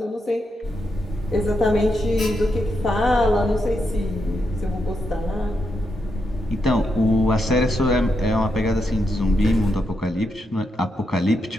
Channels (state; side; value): normal; both; correlation 0.83